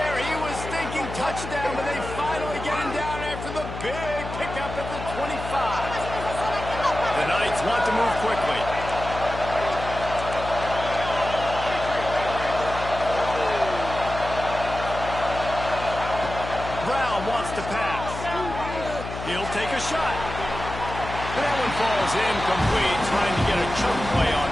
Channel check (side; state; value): left; noise; hum, 8 dB below the sound